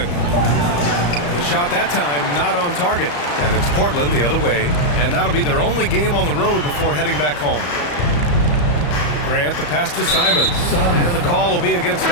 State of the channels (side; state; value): right; late; 34 ms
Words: The shot that time not on target. And it's Portland the other way. And that'll be their only game on the road before heading back home. Grant, the pass to Simons. And the call will be against